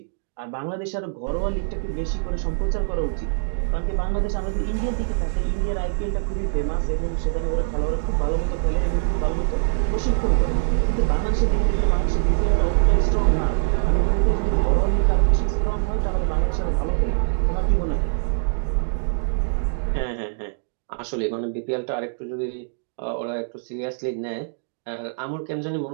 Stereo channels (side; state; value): left; silent; digital silence